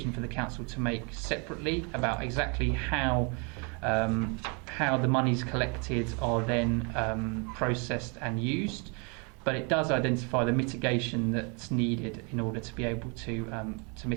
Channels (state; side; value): quieter; left; 34.2 dB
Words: for the council to make separately about exactly how the monies collected are then processed and used. But it does identify the mitigation that's needed in order to be able to